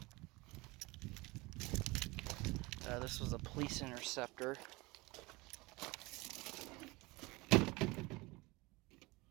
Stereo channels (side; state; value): left; quieter; 23.4 dB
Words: This was a police interceptor.